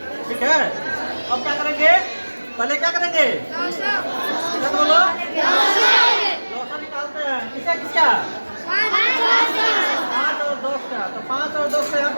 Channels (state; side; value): inverted; both; correlation -1.00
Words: ठीक है। अब क्या करेंगे, पहले क्या करेंगे, क्या बोलो, लौसा निकालते हैं। किसका किसका, 5 और 10 का। तो 5 और 10 से यहाँ